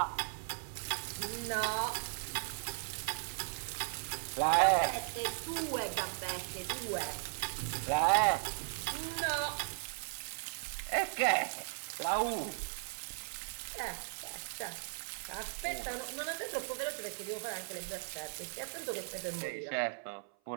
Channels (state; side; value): silent; left; 53 dB below the other